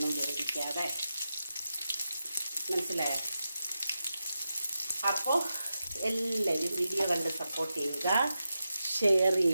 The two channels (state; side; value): inverted; both; correlation -0.89